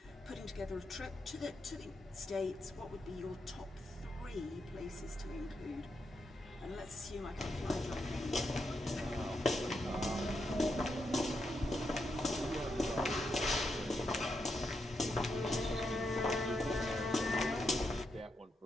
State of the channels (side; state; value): both; normal; correlation 0.83